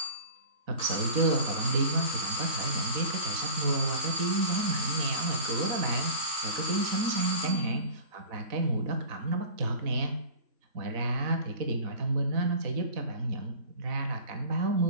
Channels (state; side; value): late; left; 4.0 ms